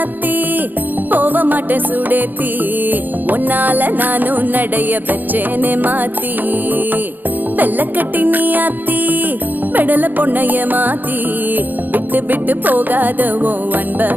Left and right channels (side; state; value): left; late; 0.087 ms